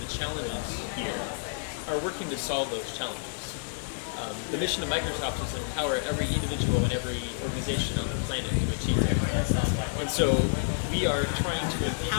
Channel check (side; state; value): right; silent; digital silence